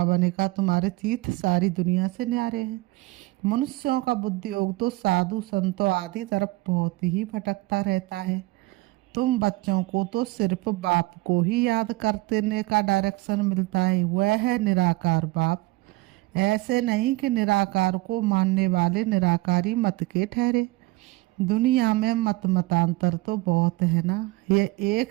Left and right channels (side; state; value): left; quieter; 21.6 dB